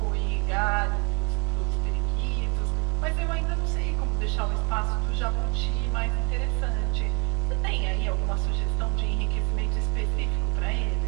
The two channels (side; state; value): left; quieter; 36.6 dB